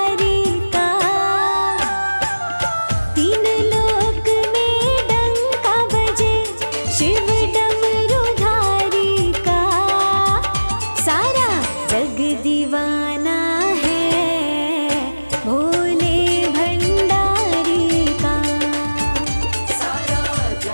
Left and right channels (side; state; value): both; inverted; correlation -1.00